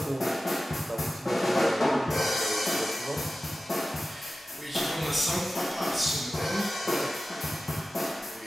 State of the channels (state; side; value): normal; both; correlation 0.95